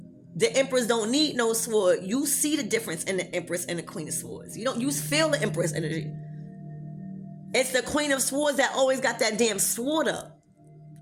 The Empress don't need no sword. You see the difference in the Empress and the Queen of Swords. You feel the Empress energy. It's the Queen of Swords that always got that damn sword up.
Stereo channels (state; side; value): identical; both; correlation 1.00